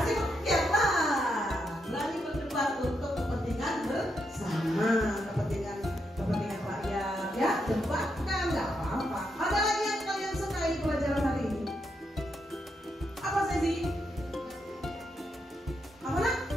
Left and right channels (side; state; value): both; normal; correlation 0.81